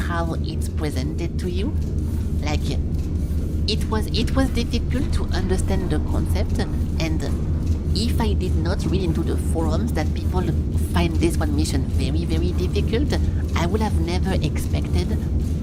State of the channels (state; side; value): identical; both; correlation 1.00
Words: it's presented to you. Like, it was difficult to understand the concept, and if I did not read into the forums that people find this one mission very, very difficult, I would have never expected